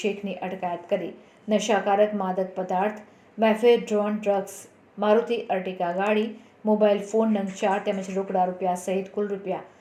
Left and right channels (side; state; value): both; identical; correlation 1.00